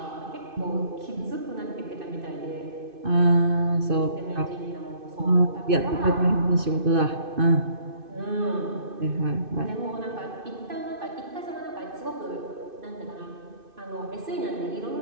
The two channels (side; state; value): left; late; 2.6 ms